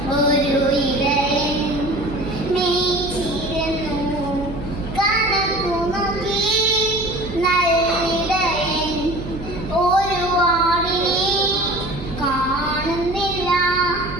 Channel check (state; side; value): noise; right; hum, 10 dB below the sound